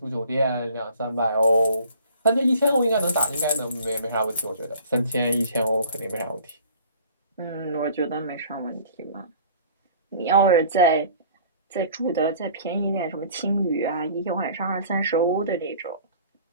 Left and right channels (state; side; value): inverted; both; correlation -0.49